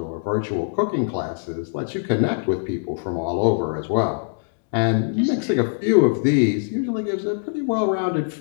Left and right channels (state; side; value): silent; right; 64 dB below the other